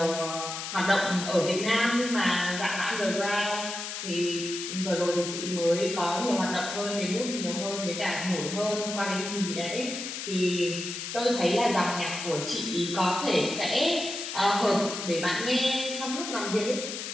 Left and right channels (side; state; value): left; noise; hiss, 6 dB below the sound